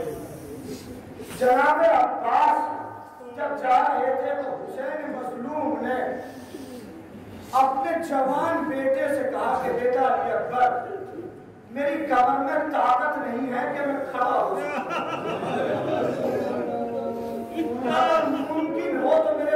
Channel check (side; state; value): both; identical; correlation 1.00